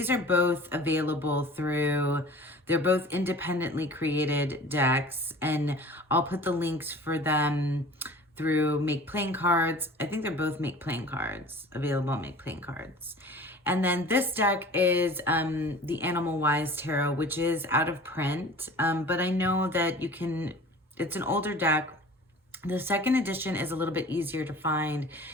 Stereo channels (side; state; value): both; normal; correlation 0.43